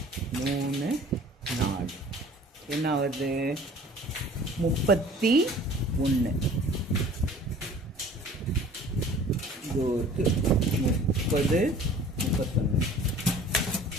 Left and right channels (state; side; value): normal; both; correlation 0.48